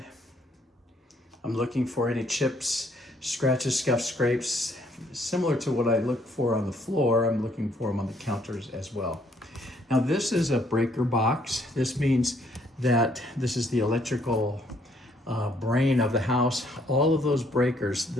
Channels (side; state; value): both; normal; correlation 0.67